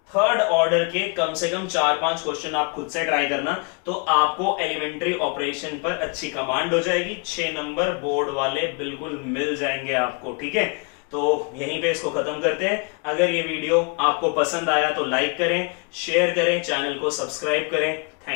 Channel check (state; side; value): quieter; right; 34.1 dB